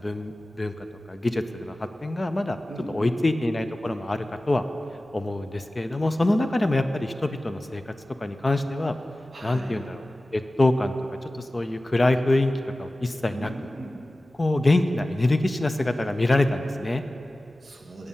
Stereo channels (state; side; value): normal; both; correlation 0.96